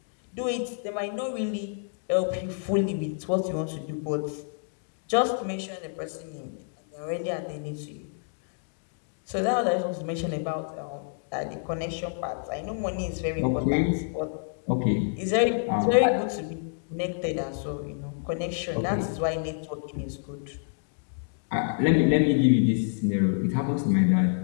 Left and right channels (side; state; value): right; silent; digital silence